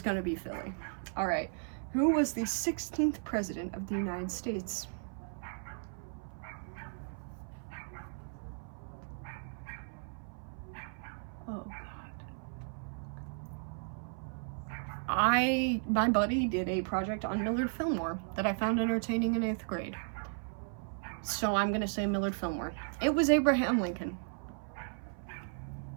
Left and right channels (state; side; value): silent; left; 54 dB below the other